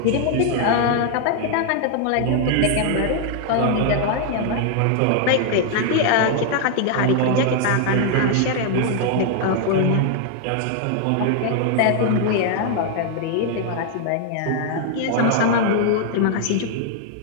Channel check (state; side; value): different; both; correlation 0.00